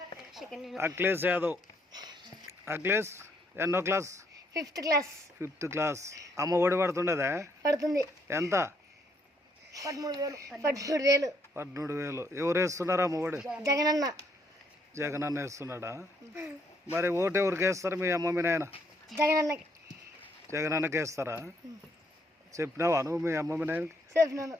అఖిలేష్ యాదవ్. అఖిలేష్ ఎన్నో క్లాస్? Fifth class. అమ్మ ఒడి పడుతుండదా? పడుతుంది. ఎంత? 13,000. ఎవరు వేస్తున్నారా అమ్మ ఒడి? జగనన్న వేస్తున్నాడా? మరి ఓటు ఎవరికి వేస్తారు? మీ అమ్మ మీ నాయన జగనన్నకి వేస్తారా? చెప్పినావా నువ్వు మీ అమ్మ మీ నాయనకి?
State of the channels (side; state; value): both; normal; correlation 0.71